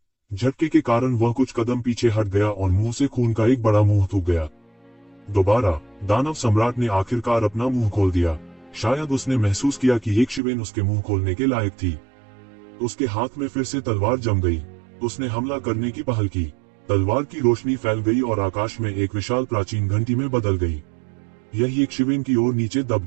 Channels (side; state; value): left; drops out; at 10.4 s